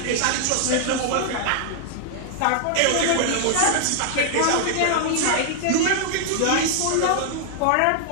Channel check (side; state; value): both; different; correlation -0.01